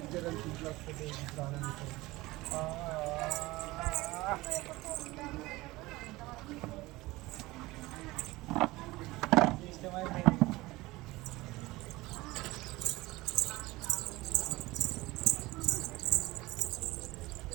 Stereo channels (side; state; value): left; quieter; 20.1 dB